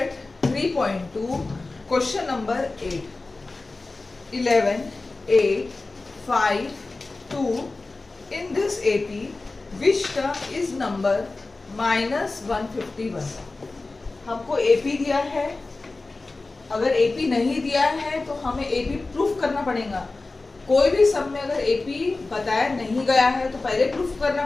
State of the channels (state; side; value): quieter; right; 3.4 dB